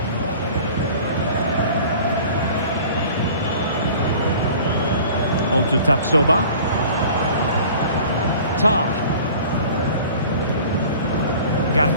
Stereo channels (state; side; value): inverted; both; correlation -0.45